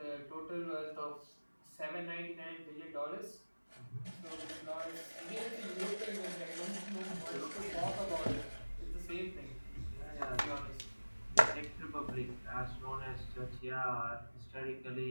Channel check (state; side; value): inverted; both; correlation -1.00